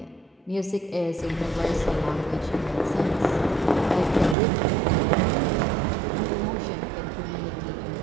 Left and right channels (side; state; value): left; drops out; at 4.4 s